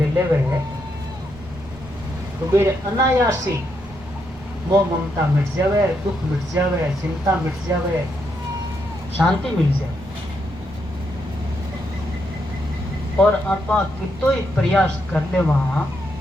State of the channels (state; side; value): noise; right; rumble, 19 dB below the sound